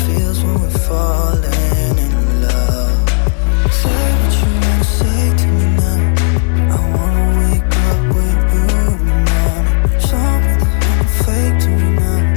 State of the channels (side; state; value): right; silent; digital silence